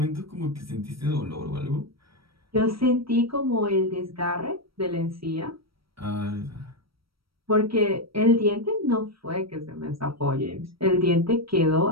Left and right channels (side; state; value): left; late; 0.75 ms